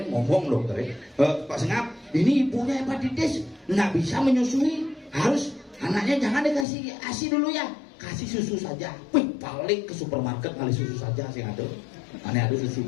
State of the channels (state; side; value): drops out; right; at 6.7 s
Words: ngomong dokter Pak Sengap ini ibunya hepatitis nggak bisa menyusui harus anaknya jangan dikasih ASI dulu ya kasih susu saja wih paling ke supermarket ngali susu saja sing ada. Ane ada susu